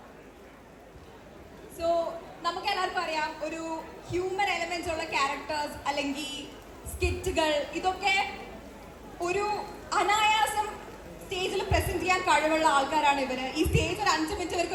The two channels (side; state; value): both; identical; correlation 1.00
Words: So നമുക്ക് എല്ലാവർക്കും അറിയാം, ഒരു ഹ്യൂമൻ എലമെന്റ്സ് ഉള്ള ക്യാരക്ടേഴ്സ് അല്ലെങ്കിൽ സ്കിറ്റുകൾ, ഇതൊക്കെ ഒരു അനായാസം സ്റ്റേജിൽ പ്രസന്റ് ചെയ്യാൻ കഴിവുള്ള ആൾക്കാരാണ് ഇവര്. ഈ സ്റ്റേജ് ഒരു 5 മിനിറ്റ്